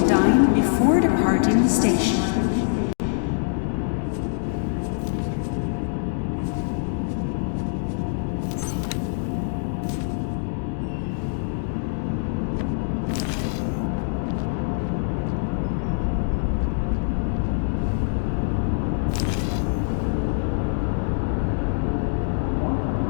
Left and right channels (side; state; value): right; silent; digital silence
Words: dine before departing the station.